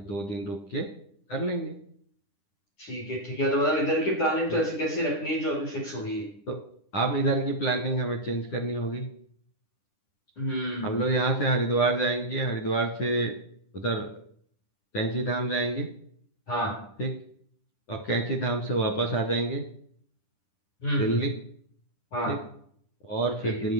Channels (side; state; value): right; late; 10 ms